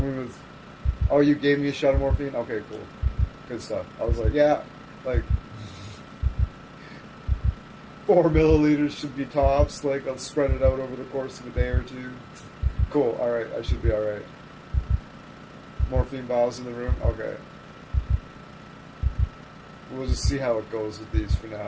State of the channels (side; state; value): both; identical; correlation 1.00